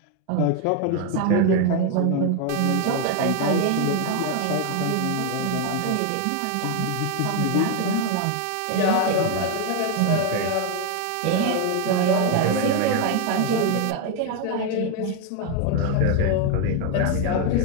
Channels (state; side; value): different; both; correlation 0.01